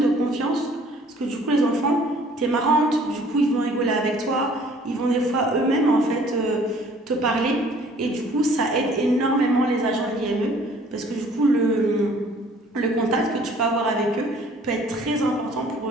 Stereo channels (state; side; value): normal; both; correlation 0.55